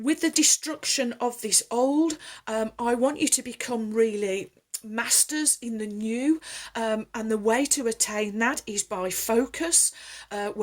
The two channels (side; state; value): both; identical; correlation 1.00